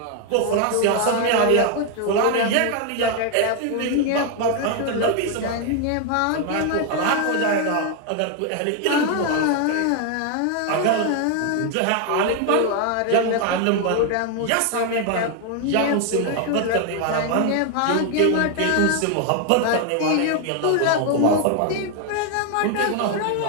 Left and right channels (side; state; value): both; different; correlation 0.01